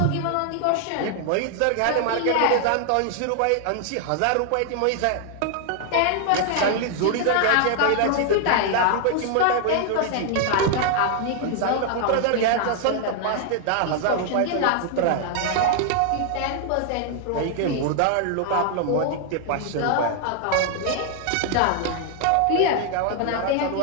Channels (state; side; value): different; both; correlation 0.00